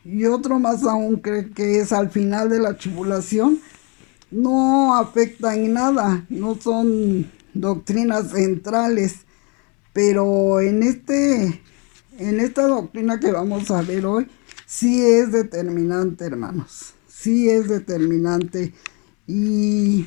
y otro más aún cree que es al final de la tribulación, no afecta en nada, no son doctrinas centrales, pero en esta doctrina que vamos a ver hoy, sí es determinante, hermanos, sí es determinante.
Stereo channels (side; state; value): right; quieter; 32.7 dB